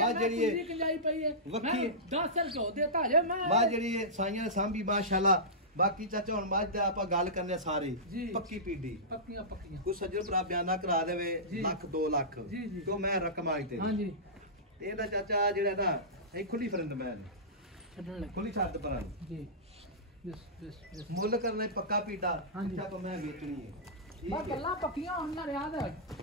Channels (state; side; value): normal; both; correlation -0.18